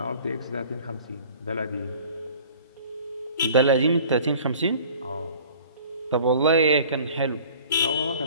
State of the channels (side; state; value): both; inverted; correlation -0.47